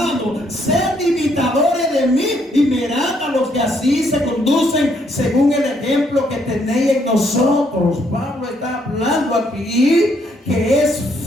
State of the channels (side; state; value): both; normal; correlation 0.71